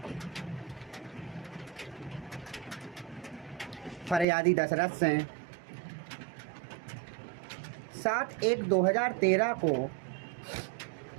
फरियादी दशरथ सिंह 7/1/2013 को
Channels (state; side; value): drops out; left; at 4.2 s